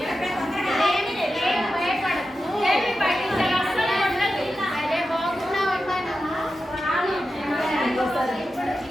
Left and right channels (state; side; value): normal; both; correlation 0.91